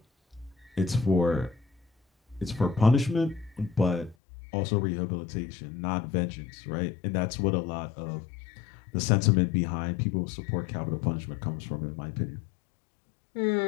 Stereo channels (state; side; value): drops out; right; at 4.2 s